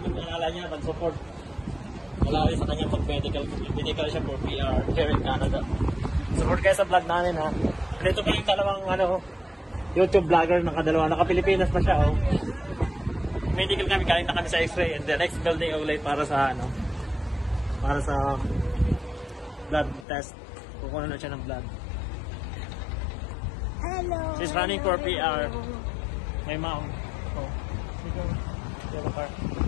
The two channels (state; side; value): drops out; right; at 20.1 s